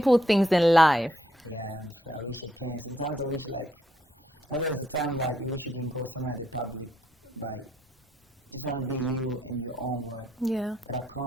things in life. Yeah, I'm sure. I wish I can. Sometimes I wish, like, there's a time, like, you wish you can go somewhere at the public, but just want to be you in your own word. Yeah. But I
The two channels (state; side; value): normal; both; correlation 0.74